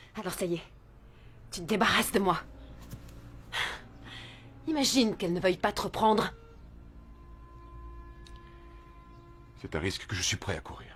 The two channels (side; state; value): both; identical; correlation 1.00